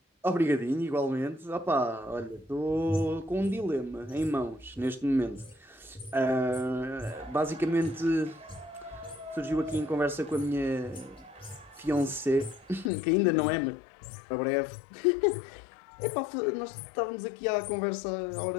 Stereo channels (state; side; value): drops out; right; at 12.9 s